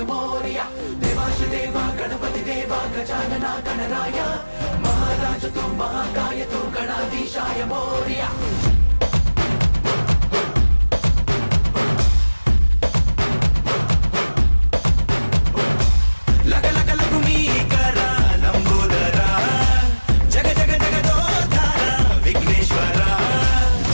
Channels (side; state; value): both; inverted; correlation -1.00